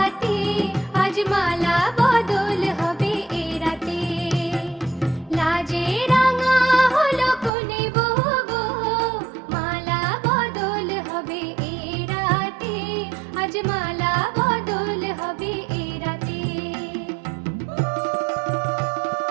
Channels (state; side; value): drops out; left; at 7.5 s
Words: আজ মালা বদল হবে এ রাতে। লাজে রাঙা হলো কোনে বগো, মালা বদল হবে এ রাতে, আজ মালা বদল হবে এ রাতে।